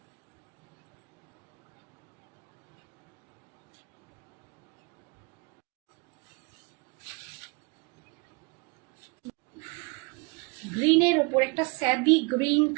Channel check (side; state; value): left; quieter; 29.7 dB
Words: গ্রিনের ওপর একটা স্যাবি গ্রিন